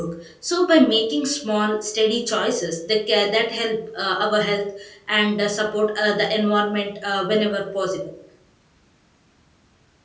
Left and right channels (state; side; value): identical; both; correlation 1.00